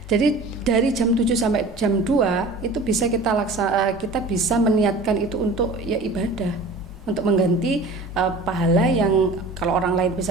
jadi dari jam 7 sampai jam 2 itu bisa kita bisa meniatkan itu untuk ya ibadah, untuk mengganti pahala yang kalau orang lain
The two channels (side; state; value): left; quieter; 3.0 dB